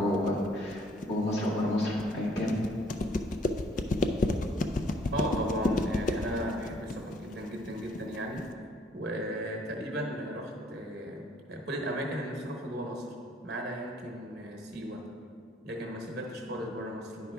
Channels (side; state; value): both; normal; correlation 0.62